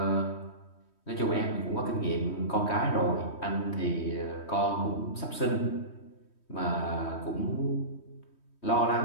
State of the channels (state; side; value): late; right; 3.2 ms